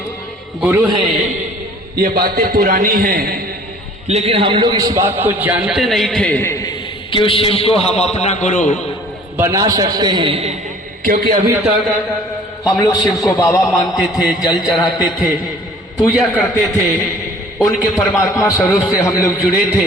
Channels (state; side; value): normal; both; correlation 0.51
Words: गुरु हैं, ये बातें पुरानी हैं, लेकिन हम लोग इस बात को जानते नहीं थे कि उस शिव को हम अपना गुरु बना सकते हैं। क्योंकि अभी तक हम लोग शिव को बाबा मानते थे, जल चढ़ाते थे, पूजा करते थे, उनके परमात्मा स्वरूप से हम लोग जुड़े थे,